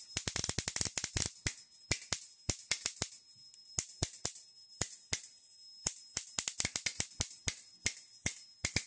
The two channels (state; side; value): identical; both; correlation 1.00